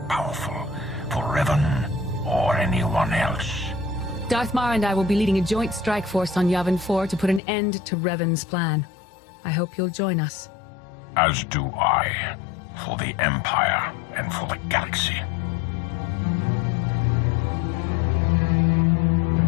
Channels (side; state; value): right; drops out; at 7.4 s